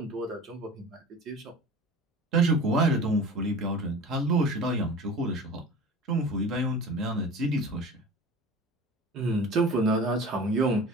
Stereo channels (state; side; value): normal; both; correlation 0.38